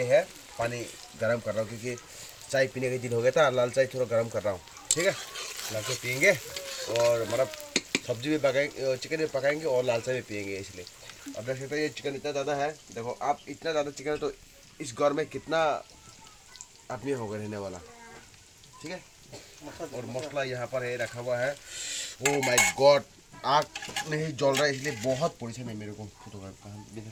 है पानी गर्म कर रहा हूँ क्योंकि चाय पीने के दिन हो गया था, लाल चाय थोड़ा गर्म कर रहा हूँ। ठीक है, लाल चाय पियेंगे और मतलब सब्जी भी पकाएंगे, चिकन भी पकाएंगे और लाल चाय भी पियेंगे इसलिए। अब देख सकते हैं ये चिकन इतना ज़्यादा है, देखो आप इतना ज़्यादा चिकन है तो इस घर में कितना आदमी होगा रहने वाला। ठीक है, और मसला यहाँ पर है रखा हुआ है। ओ माय गॉड, आग नहीं जल रहा है इसलिए बहुत पोजीशन है मेरे को। फोटोग्राफ कहाँ भी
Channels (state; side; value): identical; both; correlation 1.00